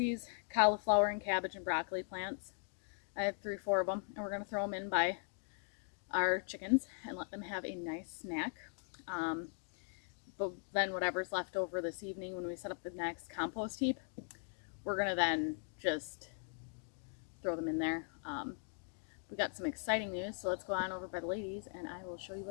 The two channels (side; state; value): right; silent; 51 dB below the other